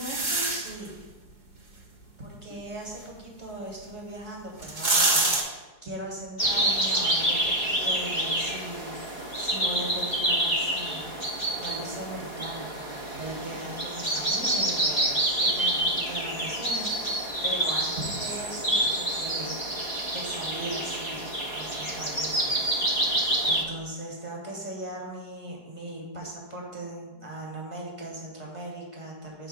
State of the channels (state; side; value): late; right; 4.7 ms